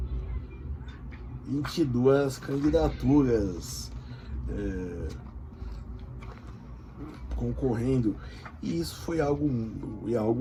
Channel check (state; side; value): identical; both; correlation 1.00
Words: 22 candidaturas. Concorrendo, e isso foi algo